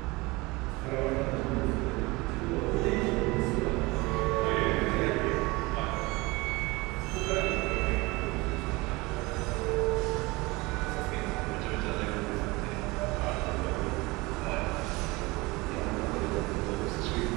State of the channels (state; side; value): quieter; left; 23.4 dB